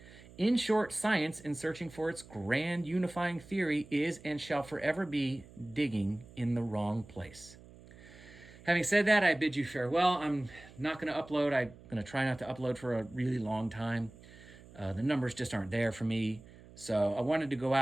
In short, science, in searching for its grand unifying theory, is and shall forever be digging in the wrong place. Having said that, I bid you farewell. I'm not going to upload. I'm going to try not to upload for a really long time. The numbers just aren't there for me. So I wanted to go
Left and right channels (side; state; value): right; noise; hum, 21 dB below the sound